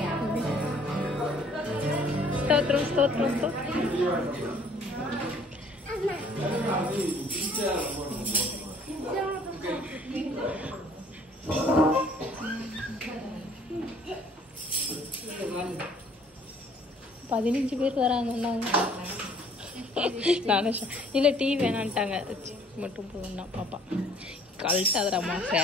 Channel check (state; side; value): normal; both; correlation 0.57